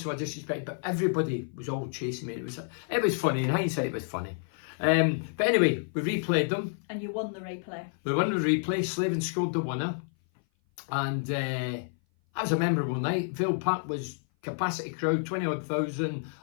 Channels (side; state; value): right; silent; 56 dB below the other